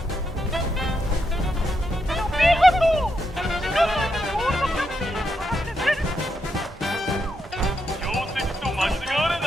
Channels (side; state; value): both; normal; correlation 0.81